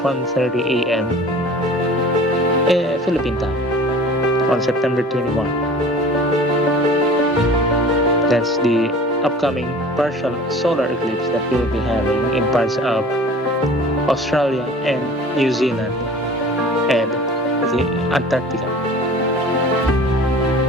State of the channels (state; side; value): normal; both; correlation 0.44